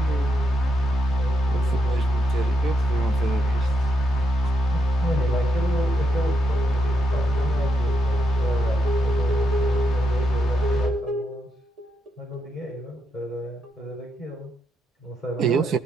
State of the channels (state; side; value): normal; both; correlation 0.80